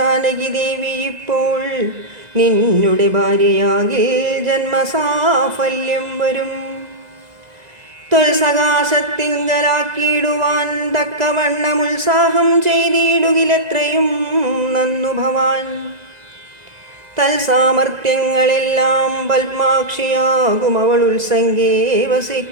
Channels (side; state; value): left; late; 2.0 ms